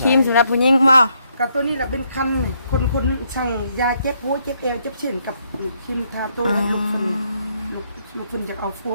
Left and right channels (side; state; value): both; inverted; correlation -0.74